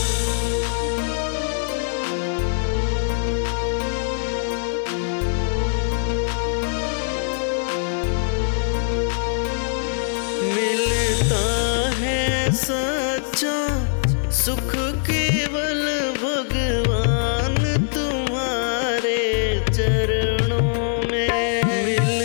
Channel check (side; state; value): right; silent; digital silence